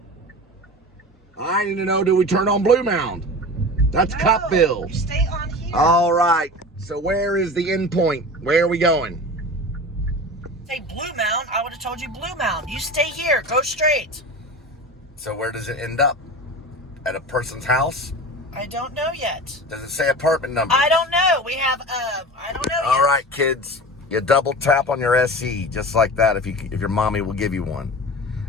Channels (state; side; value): normal; both; correlation 0.33